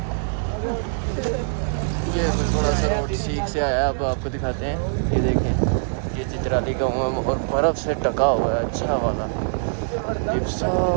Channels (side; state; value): left; silent; digital silence